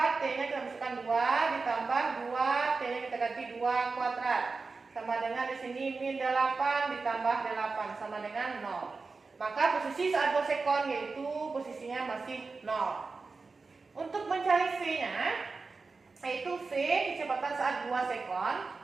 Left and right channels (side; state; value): left; quieter; 4.2 dB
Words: T-nya kita masukkan 2, ditambah 2, T-nya kita ganti 2 kuadrat. Sama dengan di sini min 8 ditambah 8 sama dengan 0. Maka posisi saat 2 sekon yaitu posisinya masih 0. Untuk mencari V-nya, yaitu V kecepatan saat 2 sekon